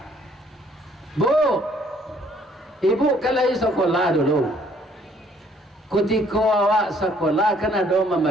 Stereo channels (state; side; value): normal; both; correlation 0.62